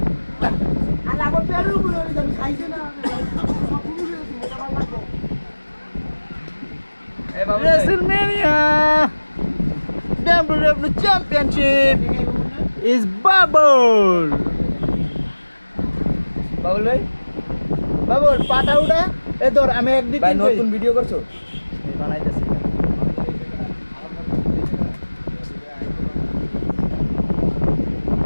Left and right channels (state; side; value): inverted; both; correlation -1.00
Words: আর আমার পেরু বলে আমি খাইছে না Hey, Babu. WrestleMania WWE Championship is Bubble. Babul ভাই বাবুল পাটা উঠা এ ধর আমি একদিন ভাই নতুন ভিডিও করছো বানাইতেছি